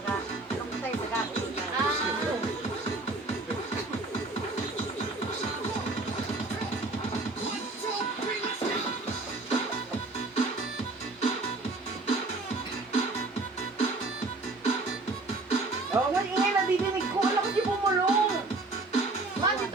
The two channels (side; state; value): left; quieter; 3.2 dB